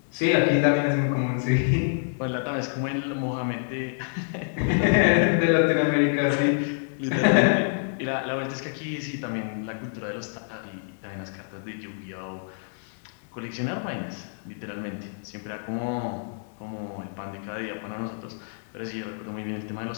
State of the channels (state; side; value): silent; right; digital silence